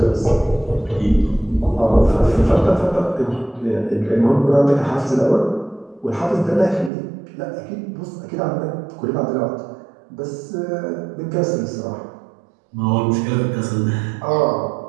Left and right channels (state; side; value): drops out; left; at 6.9 s